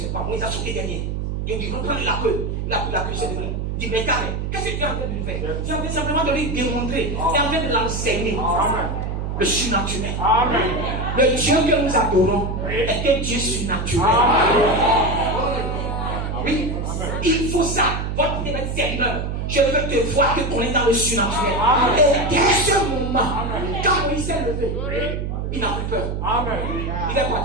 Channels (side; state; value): right; noise; hum, 3 dB below the sound